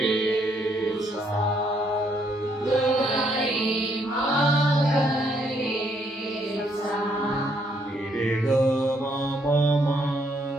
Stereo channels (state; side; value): normal; both; correlation 0.71